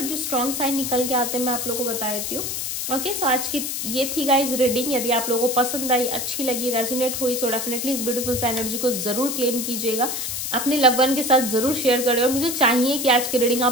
जो स्ट्रांग साइन निकल के आते हैं मैं आप लोगों को बता देती हूँ, ओके। सो आज की ये थी गाइज रीडिंग। यदि आप लोगों को पसंद आई, अच्छी लगी, रेजोनेट हुई, सो डेफिनेटली इस ब्यूटीफुल सा एनर्जी को जरूर क्लेम कीजिएगा, अपने लव वन के साथ जरूर शेयर करें। और मुझे चाहिए कि आज की रीडिंग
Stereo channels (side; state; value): left; noise; hiss, 3 dB below the sound